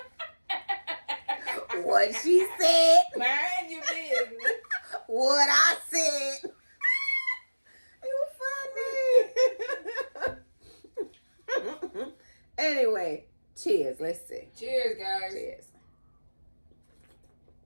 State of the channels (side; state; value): both; inverted; correlation -1.00